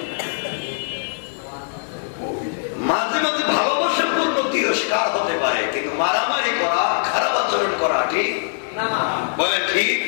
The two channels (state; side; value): silent; right; 64 dB below the other